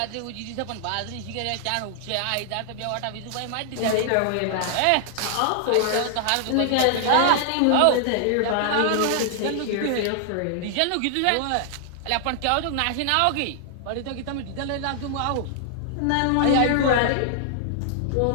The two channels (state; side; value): different; both; correlation -0.01